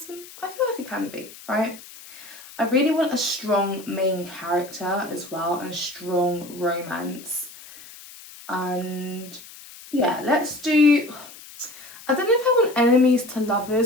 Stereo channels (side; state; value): left; noise; hiss, 18 dB below the sound